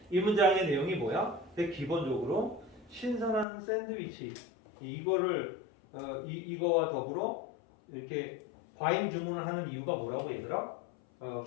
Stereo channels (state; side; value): drops out; right; at 3.5 s